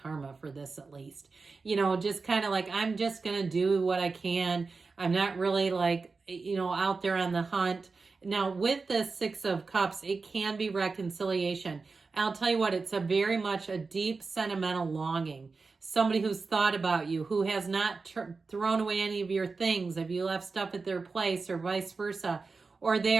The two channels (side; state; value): left; quieter; 4.3 dB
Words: for this at least. You know, just kind of like, I'm just going to do what I can. I'm not really like, you know, out there on the hunt. Now, with the Six of Cups, it can be reconciliation. I'll tell you what, it's a very much a deep sentimental longing. Somebody who's thought about you, who has not thrown away any of your things. If you left stuff at their place or vice versa, or